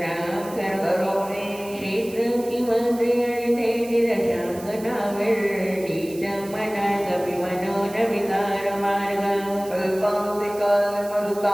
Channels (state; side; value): noise; right; hiss, 18 dB below the sound